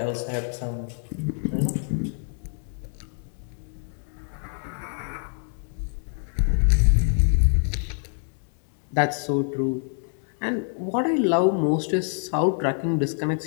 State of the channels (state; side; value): silent; right; 58 dB below the other